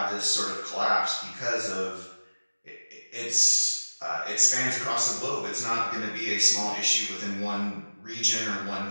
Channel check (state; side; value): inverted; both; correlation -1.00